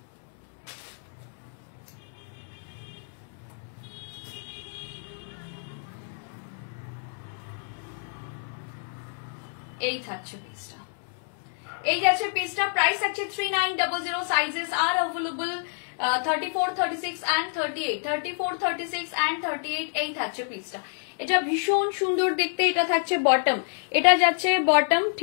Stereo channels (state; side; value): silent; right; 60 dB below the other